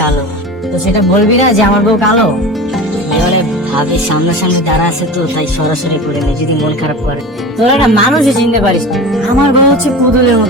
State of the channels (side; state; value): both; normal; correlation 0.32